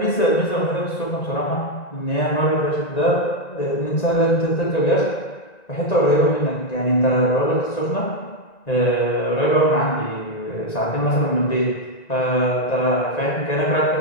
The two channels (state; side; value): late; right; 1.9 ms